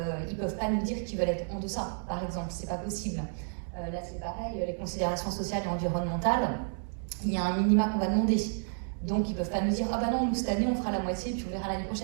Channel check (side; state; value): left; silent; 57 dB below the other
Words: ils ne peuvent pas nous dire qu'ils veulent être en deçà, par exemple, c'est pas possible. Là c'est pareil, les considérations sociales et environnementales, il y a un minima qu'on va demander. Donc ils ne peuvent pas nous dire ah bah non, nous cette année on fera la moitié puis on verra l'année